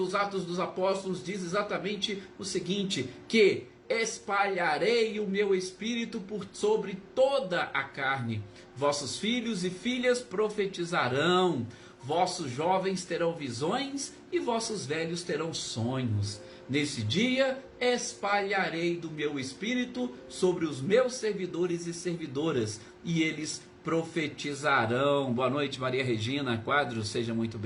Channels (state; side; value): identical; both; correlation 1.00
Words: Atos dos Apóstolos diz exatamente o seguinte, que espalharei o meu espírito por sobre toda a carne. Vossos filhos e filhas profetizarão, vossos jovens terão visões e vossos velhos terão sonhos. Nesse dia espalharei do meu espírito sobre os meus servidores e servidoras, e eles profetizarão. Boa noite, Maria Regina Quadros, seja muito